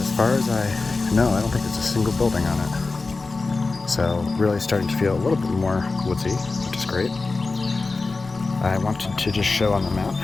far as I know, I don't think there's a single building on it. So really starting to feel a little bit more woodsy, which is great. I wanted to just show on the map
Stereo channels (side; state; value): right; quieter; 3.8 dB